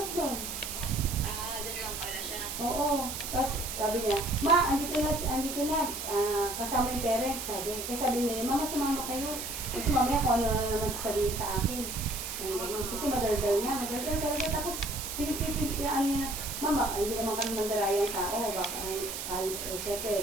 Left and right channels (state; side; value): noise; right; hiss, 6 dB below the sound